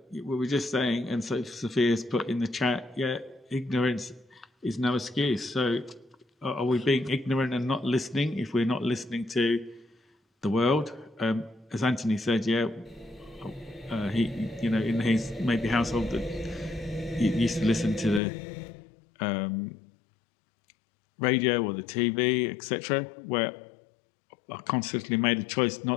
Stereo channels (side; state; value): right; drops out; at 18.2 s